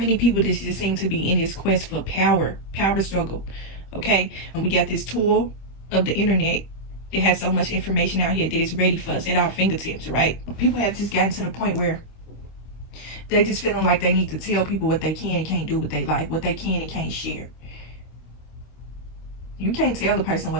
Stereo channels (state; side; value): late; right; 25 ms